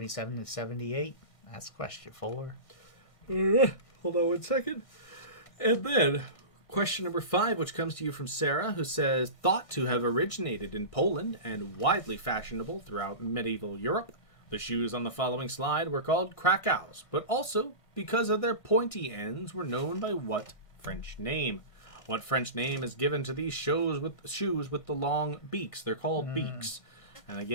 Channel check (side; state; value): right; late; 1.6 ms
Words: to 78? That's question 4. Hold on 1 second. And then, question number 5, which comes to you from Sarah, who says, thought to have originated in Poland and widely fashionable throughout medieval Europe, the shoes on the following slide were called Krakows, but also, because of their pointy ends, were known by what French name? What French name is given to these shoes with the long beaks? They're called beaks. And